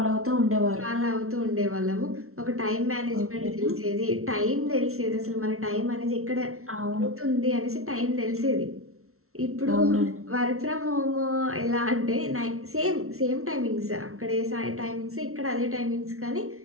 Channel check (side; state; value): left; late; 0.63 ms